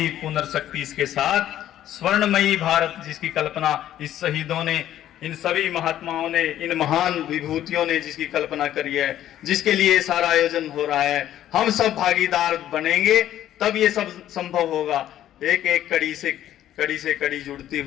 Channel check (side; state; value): right; quieter; 12.1 dB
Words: पुनर्शक्ति इसके साथ, स्वर्णमयी भारत जिसकी कल्पना इस शहीदों ने, इन सभी महात्माओं ने, इन महान विभूतियों ने जिसकी कल्पना करी है, जिसके लिए सारा आयोजन हो रहा है, हम सब भागीदार बनेंगे तब ये सब संभव होगा। एक एक कड़ी से कड़ी जुड़ती